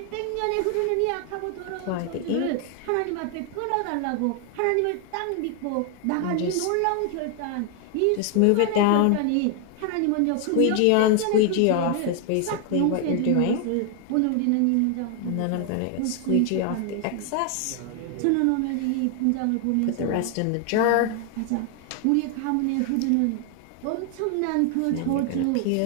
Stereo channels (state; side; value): different; both; correlation 0.00